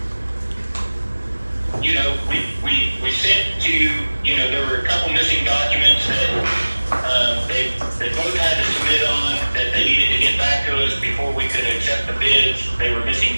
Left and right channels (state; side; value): inverted; both; correlation -1.00